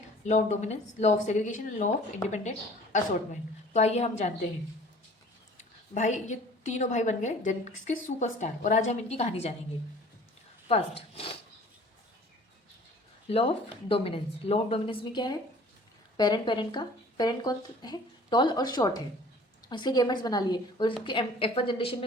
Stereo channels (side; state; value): both; normal; correlation 0.49